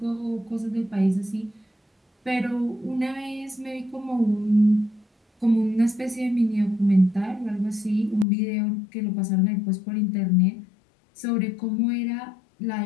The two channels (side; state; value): right; drops out; at 8.2 s